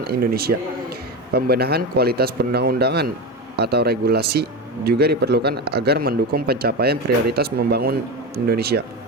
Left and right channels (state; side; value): normal; both; correlation 0.20